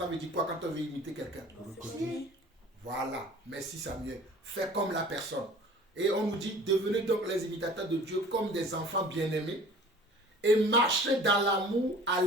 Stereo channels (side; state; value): both; normal; correlation 0.46